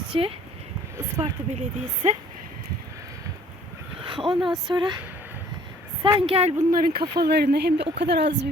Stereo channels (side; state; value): both; normal; correlation 0.55